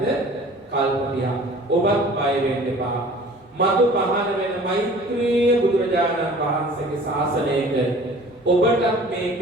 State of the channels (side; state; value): both; normal; correlation 0.47